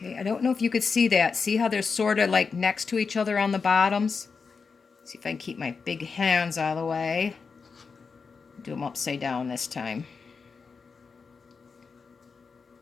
I don't know if you could see that. See how they're sort of like next to each other on the bottoms? See if I can keep my big hands out of the way. Do them upside down this time.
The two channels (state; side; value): quieter; right; 5.1 dB